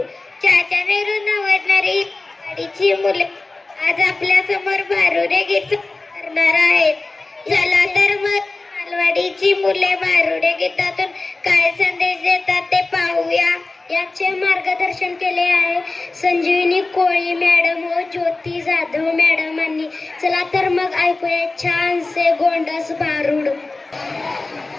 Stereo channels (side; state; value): right; quieter; 3.3 dB